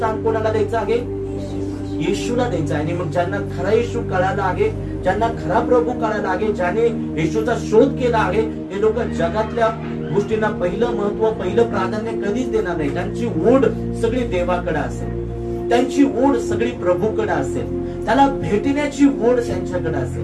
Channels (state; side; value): identical; both; correlation 1.00